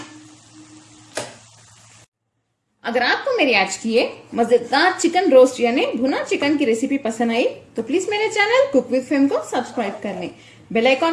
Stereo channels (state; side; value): identical; both; correlation 1.00